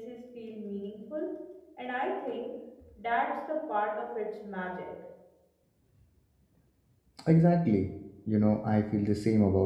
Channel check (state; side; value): identical; both; correlation 1.00